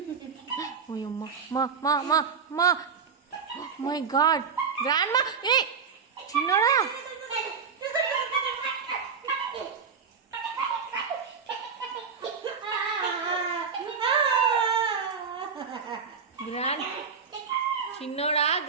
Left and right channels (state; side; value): quieter; left; 5.9 dB